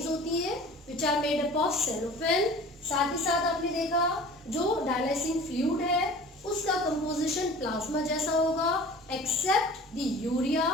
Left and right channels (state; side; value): normal; both; correlation 0.43